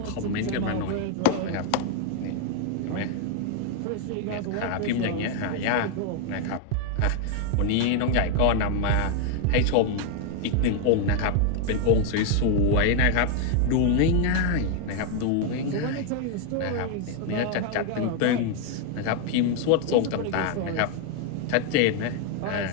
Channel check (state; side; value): different; both; correlation 0.00